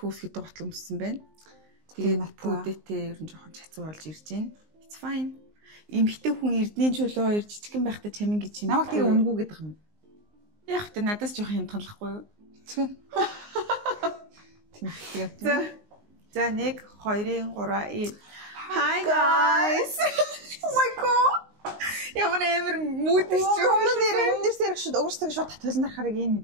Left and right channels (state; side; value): late; left; 19 ms